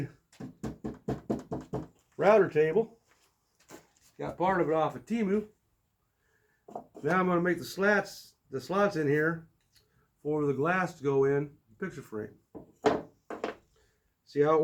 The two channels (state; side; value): identical; both; correlation 1.00